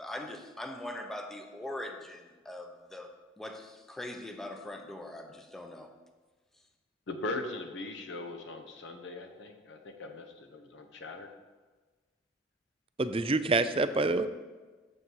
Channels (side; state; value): both; normal; correlation 0.40